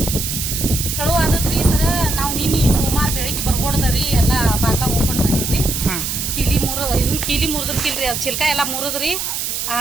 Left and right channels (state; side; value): noise; right; hiss, 3 dB below the sound